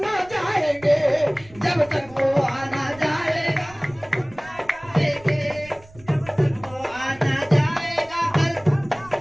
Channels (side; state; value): right; noise; rumble, 24 dB below the sound